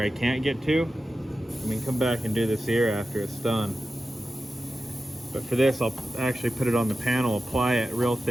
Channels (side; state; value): both; normal; correlation 0.93